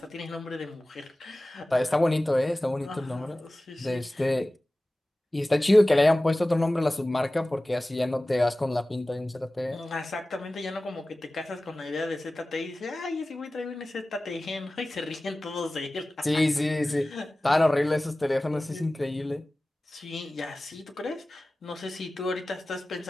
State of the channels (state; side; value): normal; both; correlation 0.97